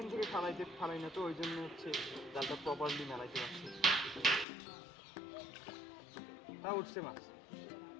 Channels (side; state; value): right; drops out; at 4.5 s